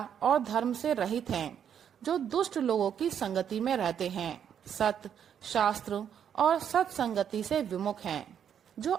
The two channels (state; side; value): quieter; left; 8.6 dB